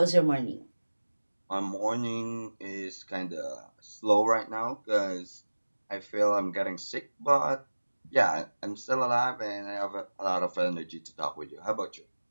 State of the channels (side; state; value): both; inverted; correlation -1.00